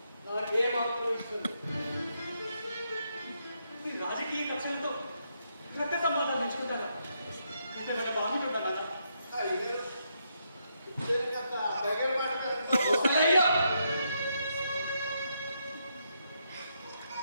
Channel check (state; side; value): inverted; both; correlation -0.79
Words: నాకేమాత్రం ఇష్టం లేదు. ఈ రాజకీయ కక్షలతో రక్త సంబంధాలు నేర్చుకుంటారా? ఇంతేమైనా బాగుంటుందా నాన్న?